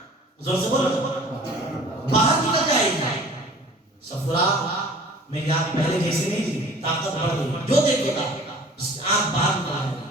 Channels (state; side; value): normal; both; correlation 0.47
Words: زور سے بولو باہر نکل جائے گی. صفرہ میری آنکھ پہلے جیسی نہیں تھی، طاقت بڑھ گئی، جو دیکھے گا اس کی آنکھ باہر نکل جائے